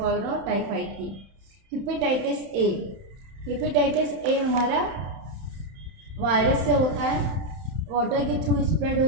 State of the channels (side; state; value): left; late; 31 ms